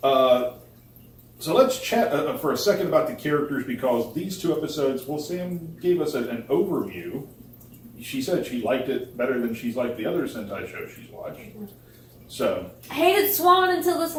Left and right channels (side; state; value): both; identical; correlation 1.00